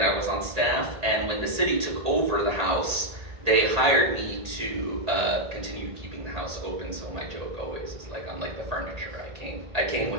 I was on staff, and when the city took over the house, they hired me to continue keeping the house open. So my joke always is like, I'm like the furniture. I came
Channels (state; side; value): late; left; 1.8 ms